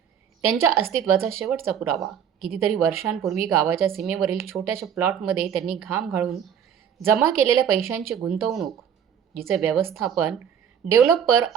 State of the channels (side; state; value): left; quieter; 8.4 dB